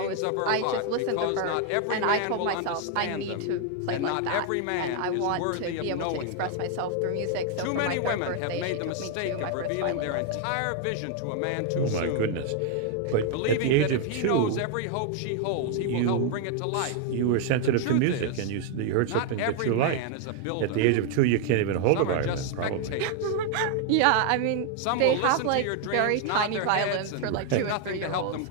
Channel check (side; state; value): both; different; correlation 0.00